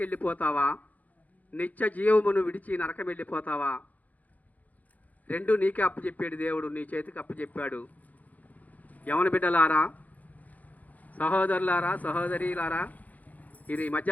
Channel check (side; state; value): right; late; 0.078 ms